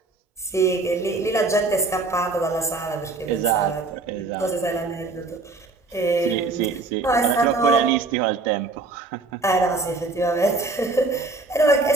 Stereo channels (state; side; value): quieter; left; 3.6 dB